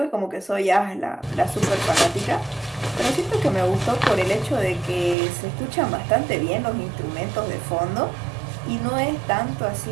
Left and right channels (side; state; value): left; drops out; at 5.2 s